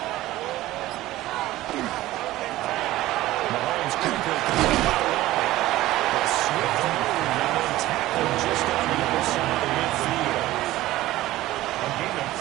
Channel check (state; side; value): quieter; left; 16.3 dB